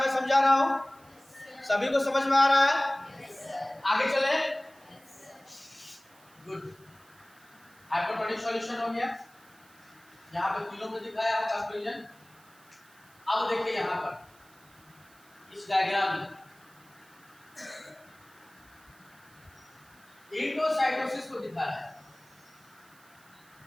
समझा रहा हूँ, सभी को समझ में आ रहा है, आगे चले। गुड, हाइपोटोनिक सॉल्यूशन हो गया, यहाँ पे तीनों में दिखाया है कंक्लूजन। अब देखिए यहाँ पर इस डायग्राम में एंडोसाइटोसिस को दिखा रहा है,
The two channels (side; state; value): right; noise; hiss, 27 dB below the sound